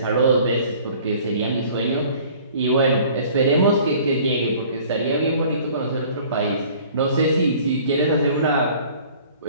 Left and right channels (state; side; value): inverted; both; correlation -0.51